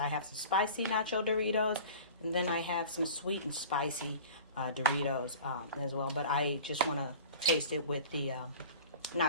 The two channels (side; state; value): both; inverted; correlation -0.41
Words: have some spicy nacho Doritos, and then I have some sweet and spicy Doritos as well. But I just want to taste it with the